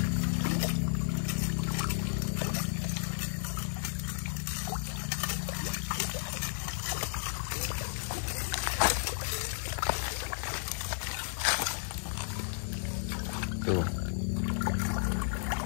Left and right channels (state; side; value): silent; right; 56 dB below the other